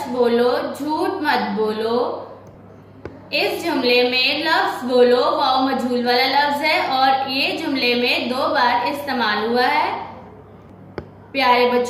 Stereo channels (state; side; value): identical; both; correlation 1.00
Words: बोलो झूठ मत बोलो। इस जुमले में लफ्ज बोलो वाव मजहूल वाला लफ्ज है और ये जुमले में 2 बार इस्तेमाल हुआ है। प्यारे